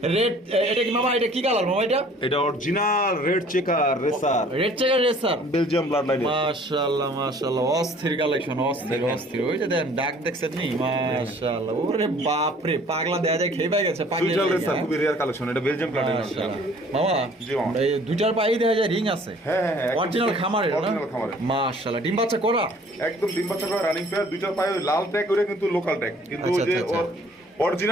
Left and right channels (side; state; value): both; normal; correlation 0.54